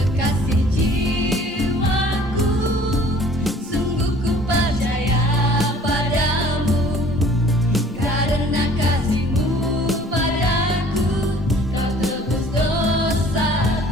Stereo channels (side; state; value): both; normal; correlation 0.53